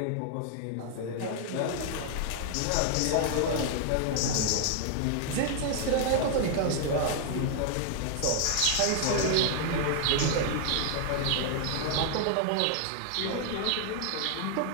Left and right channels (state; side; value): different; both; correlation 0.00